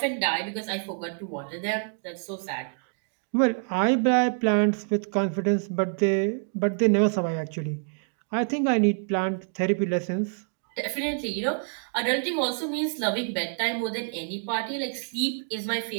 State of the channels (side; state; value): left; silent; digital silence